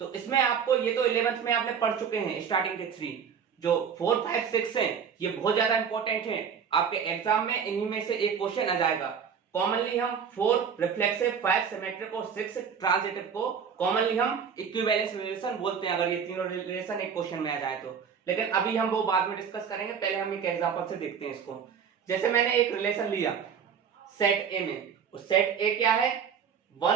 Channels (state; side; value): quieter; left; 7.1 dB